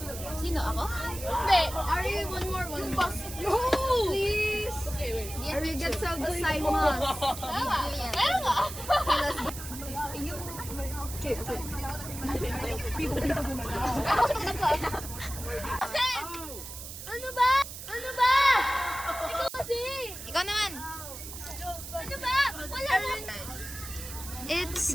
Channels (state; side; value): noise; right; hiss, 10 dB below the sound